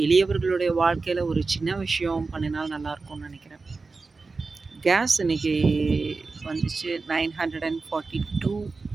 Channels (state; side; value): quieter; left; 4.0 dB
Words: எளியவர்களுடைய வாழ்க்கையில் ஒரு சின்ன விஷயம் பண்ணினால் நல்லாயிருக்கும்னு நினைக்கிறேன். கேஸ் இன்னைக்கு வந்துச்சு 942